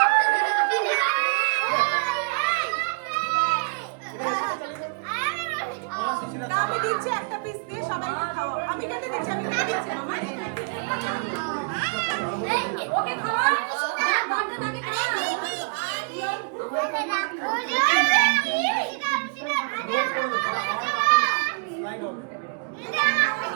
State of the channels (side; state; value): left; quieter; 33.3 dB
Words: আমি দিচ্ছি একটা পিস দিয়ে সবাইকে খাওয়াও। আমি কেটে দিচ্ছি, আমি কেটে দিচ্ছি। ওকে খাওয়া